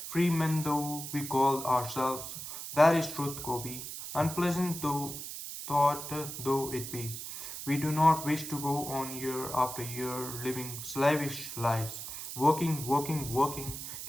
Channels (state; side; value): noise; right; hiss, 8 dB below the sound